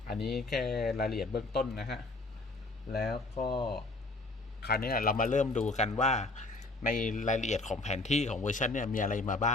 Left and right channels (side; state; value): right; quieter; 3.1 dB